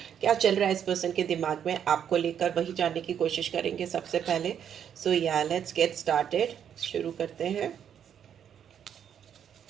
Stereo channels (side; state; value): left; quieter; 8.8 dB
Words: क्या चल रहा है इस पर्सन के दिमाग में आपको लेकर, वही जानने की कोशिश करेंगे सबसे पहले। सो या लेट्स गेट स्टार्टेड, शुरू करते हैं।